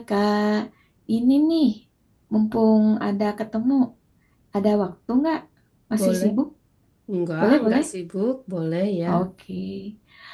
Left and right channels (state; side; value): identical; both; correlation 1.00